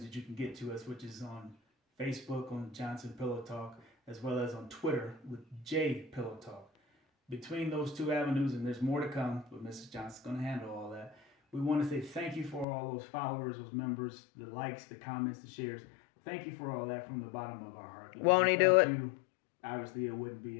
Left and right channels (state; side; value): drops out; right; at 12.7 s